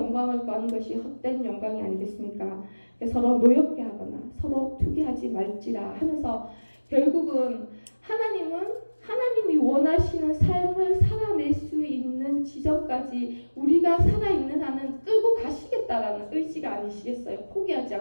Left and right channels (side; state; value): both; inverted; correlation -1.00